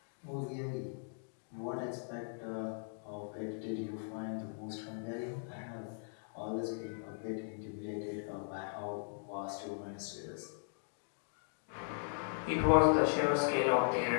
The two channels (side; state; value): right; silent; digital silence